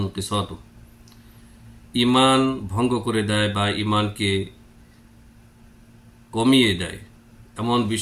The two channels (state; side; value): identical; both; correlation 1.00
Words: ঈমান ভঙ্গ করে দেয় বা ঈমানকে কমিয়ে দেয় এমন